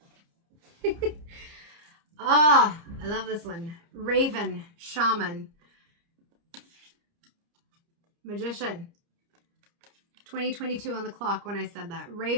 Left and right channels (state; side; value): late; left; 30 ms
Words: Ah, I love this one. Raven, Shaman, Magician. 2022 on the clock when I said that.